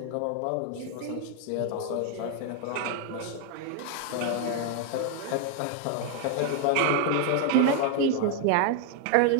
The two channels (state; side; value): different; both; correlation 0.00